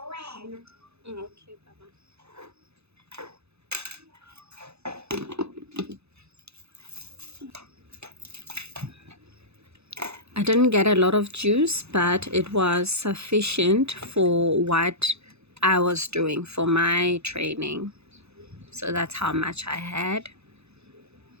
Okay, Baba. I didn't get a lot of juice, but it was sufficient for what I was doing for my training. So that's how much I had.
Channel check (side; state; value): left; late; 0.80 ms